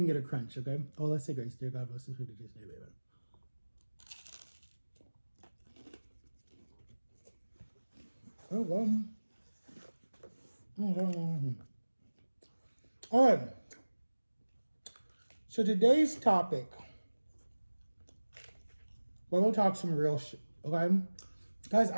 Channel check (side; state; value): both; inverted; correlation -1.00